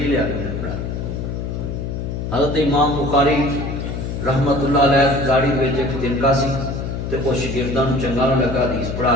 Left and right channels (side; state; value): left; noise; hum, 4 dB below the sound